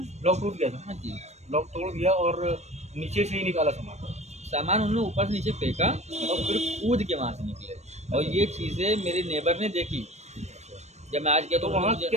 लॉक टूट गया था? हाँ जी, लॉक तोड़ दिया और नीचे से ही निकाला सामान। सामान उन्होंने ऊपर से नीचे फेंका और फिर कूद के वहाँ से निकले, और ये चीज़ें मेरे नेबर ने देखी। जब मैं आज गया तो तो उन्होंने वहाँ मुझे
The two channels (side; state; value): left; late; 0.32 ms